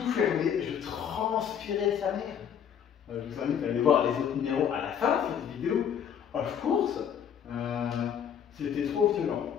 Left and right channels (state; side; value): quieter; right; 8.4 dB